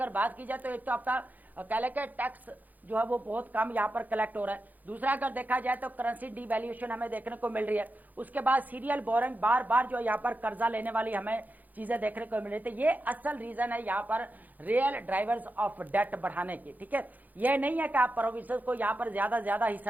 बात की जाए तो एक तो आपका कह लेके टैक्स जो है वो बहुत कम यहाँ पर कलेक्ट हो रहा है। दूसरा अगर देखा जाए तो करेंसी डिवैल्यूएशन हमें देखने को मिल रही है। उसके बाद सीरियल बोरिंग बार जो यहाँ पर कर्जा लेने वाली हमें चीजें देखने को मिल रही थी। ये असल रीजन है यहाँ पर रियल ड्राइवर्स ऑफ डेट बढ़ाने की, ठीक है। ये नहीं है कि आप प्रोविंसेस को यहाँ पर ज्यादा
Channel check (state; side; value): late; left; 0.082 ms